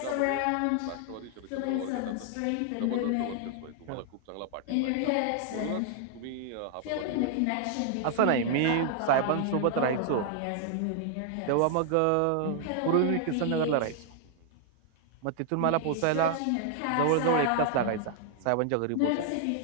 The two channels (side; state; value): both; different; correlation -0.01